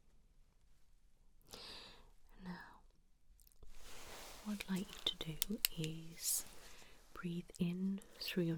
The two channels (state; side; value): identical; both; correlation 1.00